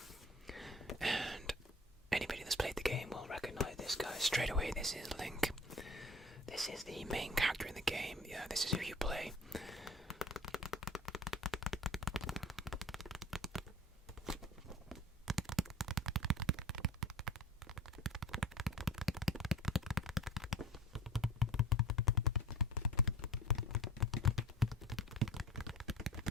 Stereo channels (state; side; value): normal; both; correlation 0.41